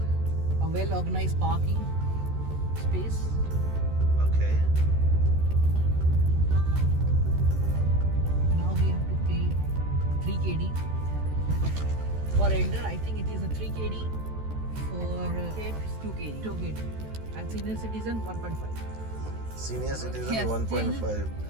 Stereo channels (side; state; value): left; late; 13 ms